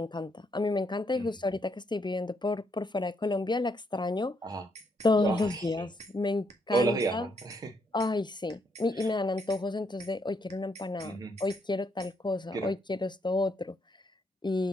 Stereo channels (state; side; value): normal; both; correlation 0.74